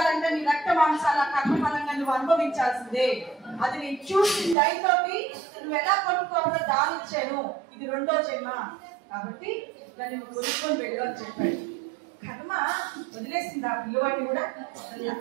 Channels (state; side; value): drops out; left; at 4.5 s